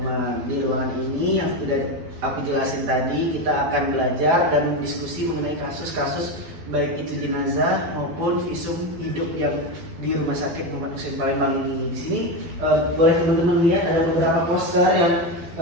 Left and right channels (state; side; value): late; left; 12 ms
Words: Di ruangan ini yang sudah aku jelasin tadi, kita akan belajar dan diskusi mengenai kasus-kasus baik itu jenazah maupun visum hidup yang di Rumah Sakit Muhammad Hussein Palembang ini. Di sini boleh teman-teman lihat ada beberapa poster yang